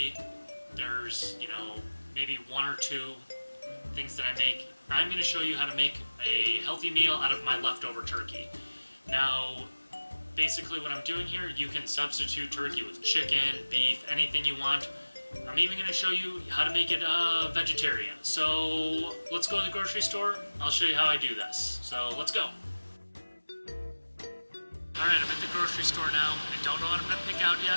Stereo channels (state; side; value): inverted; both; correlation -1.00